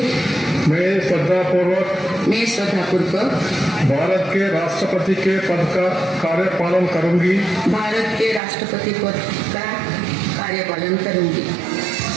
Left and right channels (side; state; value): left; drops out; at 8.4 s